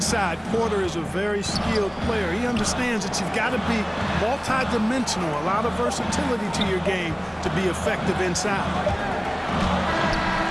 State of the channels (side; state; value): both; identical; correlation 1.00